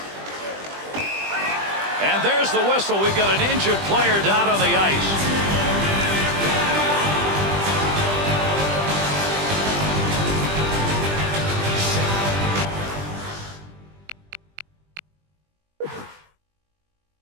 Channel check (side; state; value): left; late; 20 ms